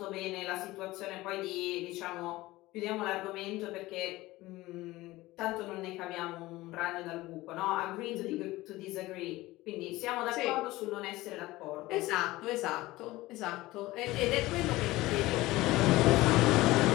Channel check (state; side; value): quieter; right; 18.7 dB